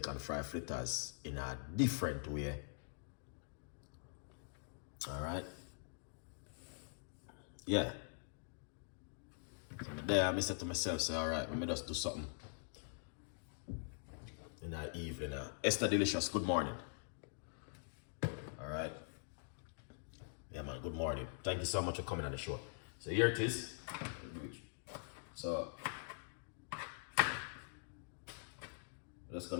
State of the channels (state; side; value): silent; right; digital silence